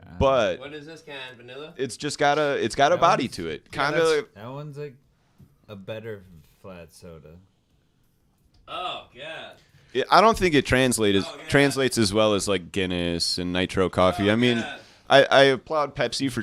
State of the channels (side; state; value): both; identical; correlation 1.00